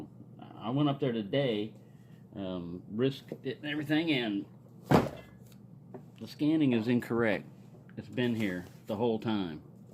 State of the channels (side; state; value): both; identical; correlation 1.00